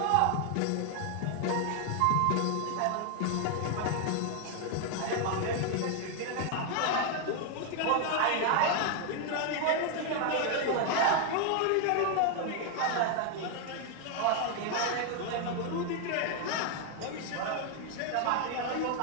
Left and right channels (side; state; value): both; different; correlation 0.00